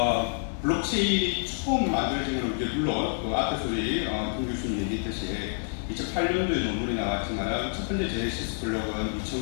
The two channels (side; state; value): right; silent; 59 dB below the other